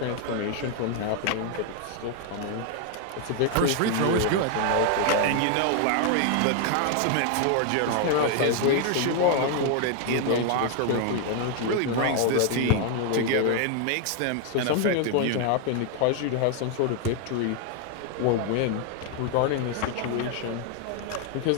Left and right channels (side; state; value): both; different; correlation 0.00